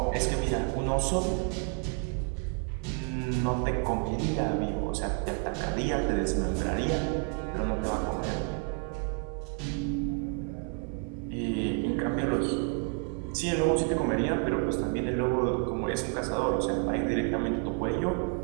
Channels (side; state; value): left; quieter; 36.8 dB